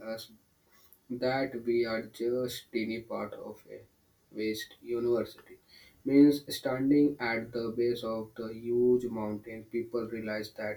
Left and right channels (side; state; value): both; identical; correlation 1.00